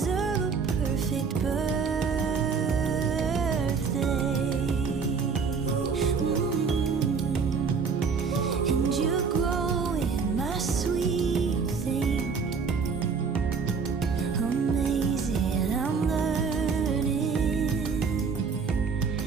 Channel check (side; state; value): left; quieter; 5.4 dB